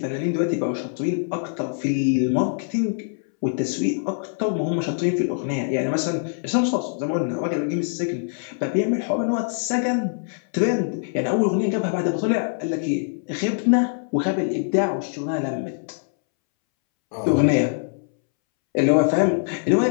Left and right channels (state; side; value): silent; right; 63 dB below the other